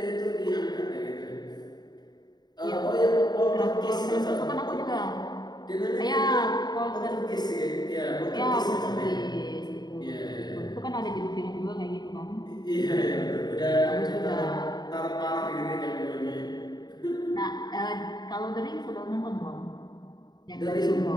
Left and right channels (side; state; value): right; late; 0.20 ms